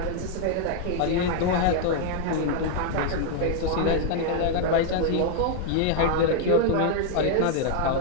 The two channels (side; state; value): both; different; correlation 0.00